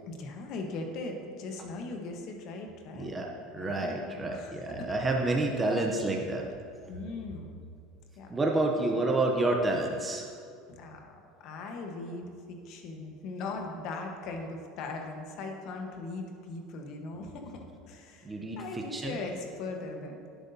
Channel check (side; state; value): both; normal; correlation 0.58